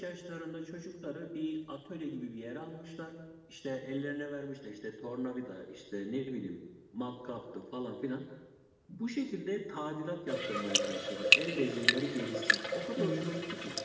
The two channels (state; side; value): identical; both; correlation 1.00